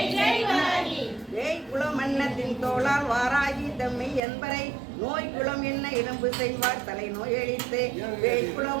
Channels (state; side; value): drops out; left; at 4.2 s